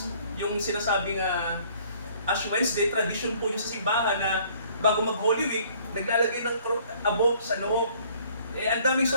yung sinasabing Ash Wednesday, tradition po yung sa simbahan na bago mag-Holy Week, naglalagay ng abo sa noo. Ang daming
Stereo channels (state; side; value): inverted; both; correlation -0.59